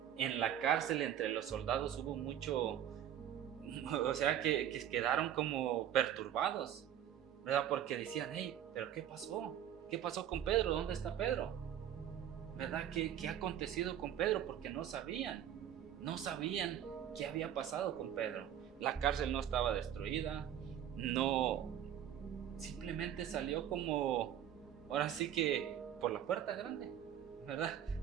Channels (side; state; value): left; quieter; 10.3 dB